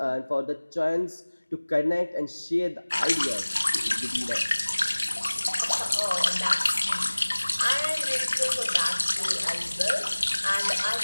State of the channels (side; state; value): both; inverted; correlation -1.00